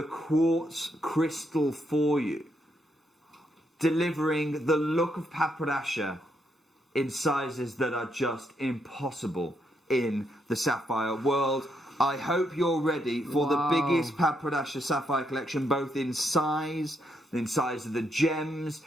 quartz crystal for you, delivering the look of Padpadasha in sizes that are just impossible in the sapphire world. I hope you're ready for the biggest Padpadasha sapphire collection, both in size of the gems,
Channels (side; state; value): both; normal; correlation 0.77